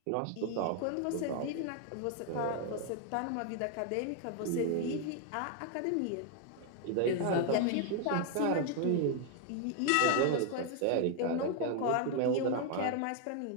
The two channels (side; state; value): both; different; correlation 0.00